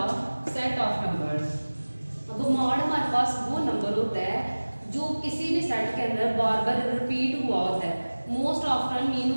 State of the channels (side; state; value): both; inverted; correlation -1.00